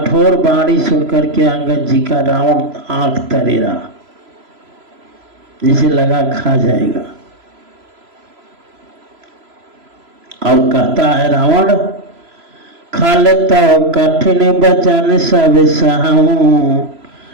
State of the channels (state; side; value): late; left; 3.0 ms